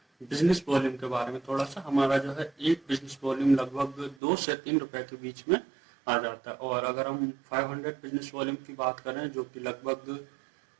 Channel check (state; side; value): drops out; left; at 4.2 s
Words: बिजनेस वॉल्यूम के बारे में थोड़ा सा। हमारा जो है एक बिजनेस वॉल्यूम लगभग 2 से 3 रुपए के बीच में आ जाता है। और अगर हम 500 बिजनेस वॉल्यूम की बात करें, जो कि लगभग